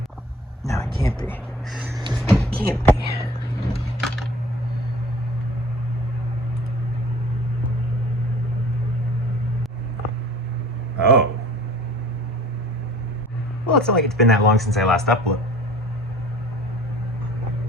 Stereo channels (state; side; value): normal; both; correlation 0.46